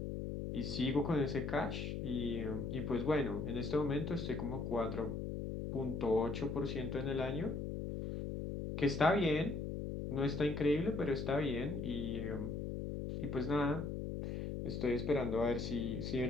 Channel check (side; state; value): left; noise; hum, 4 dB below the sound